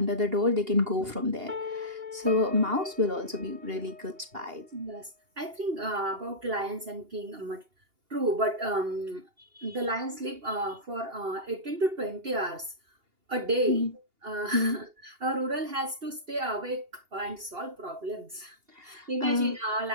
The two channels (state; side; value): late; left; 2.8 ms